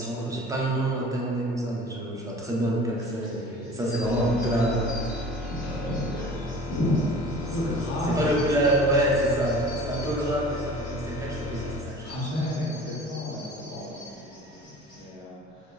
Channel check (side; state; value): both; normal; correlation 0.43